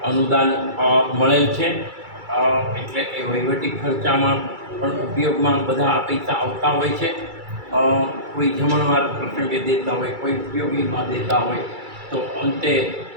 અનુદાન મળેલ છે. એટલે એ વહીવટી ખર્ચામાં પણ ઉપયોગમાં બધા પૈસા આવતા હોય છે. કોઈ જમણવાર પ્રસંગે દેતા હોય, કોઈ ઉપયોગીમાં દેતા હોય, તો અંતે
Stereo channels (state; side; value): late; left; 2.3 ms